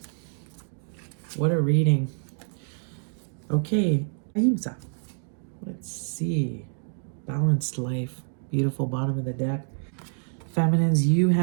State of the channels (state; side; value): silent; left; digital silence